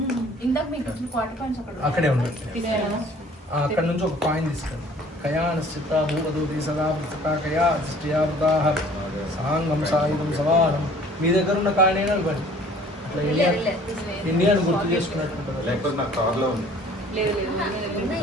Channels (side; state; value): both; normal; correlation 0.52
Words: ఇందాక మీకు వచ్చిన క్వార్టర్ పాయింట్స్ అక్కడే ఉన్నాయి అక్కడ నుంచి ఒక కాయిన్ తీసుకెళ్ళి కయానశ్చిత్త భూమదూతి సదా వృత్తా కయా అధిష్ఠయావృతాః సాంగం సాయుధం సమానం మీ దగ్గర ఉన్న కాయిన్ అయినా ఇవ్వండి అట్లా ఇండియాను గుర్తు చేసుకున్నట్టు లేకపోతే నాకు కార్లో ఉంది లేదు